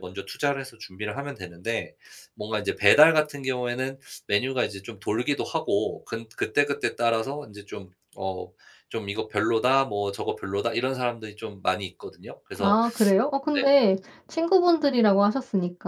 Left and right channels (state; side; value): identical; both; correlation 1.00